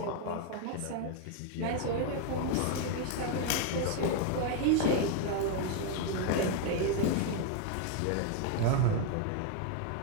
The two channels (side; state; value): both; different; correlation 0.01